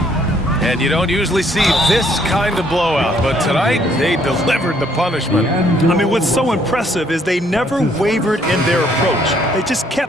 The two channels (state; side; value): normal; both; correlation 0.66